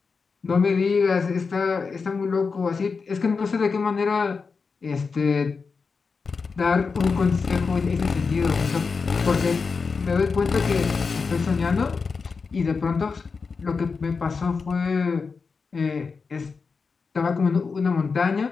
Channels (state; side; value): quieter; right; 4.9 dB